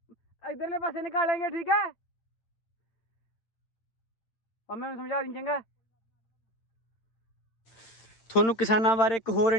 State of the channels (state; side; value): late; right; 8.8 ms